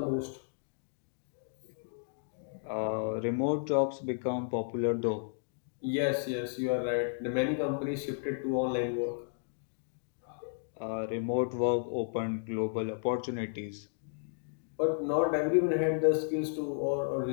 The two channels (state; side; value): silent; right; digital silence